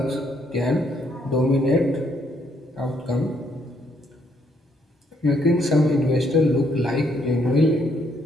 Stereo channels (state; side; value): normal; both; correlation 0.71